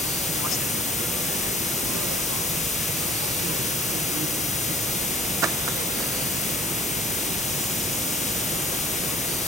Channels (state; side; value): normal; both; correlation 0.54